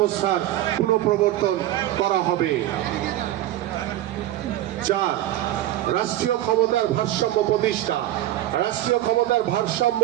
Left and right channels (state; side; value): quieter; left; 14.0 dB